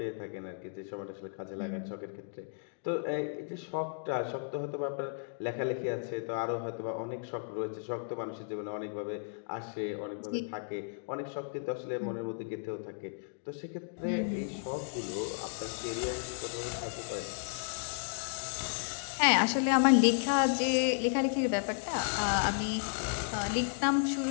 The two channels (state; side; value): silent; right; digital silence